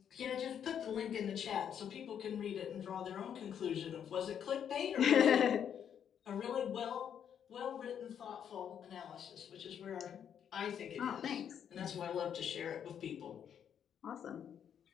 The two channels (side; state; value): right; quieter; 8.7 dB